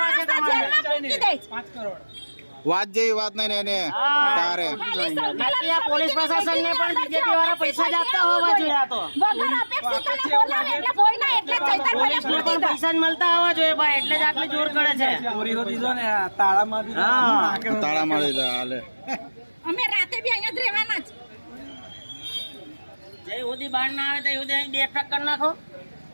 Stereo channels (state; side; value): inverted; both; correlation -1.00